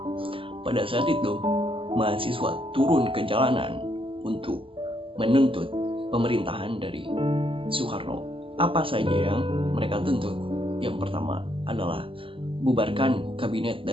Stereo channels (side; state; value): left; late; 0.26 ms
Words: Pada saat itu, mahasiswa turun ke jalanan untuk menuntut pemerintahan dari Soekarno. Apa saja yang mereka tuntut? Yang pertama adalah bubarkan kabinet